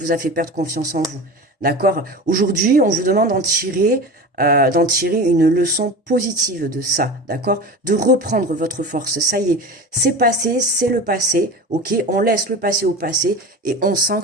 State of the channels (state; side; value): normal; both; correlation 0.31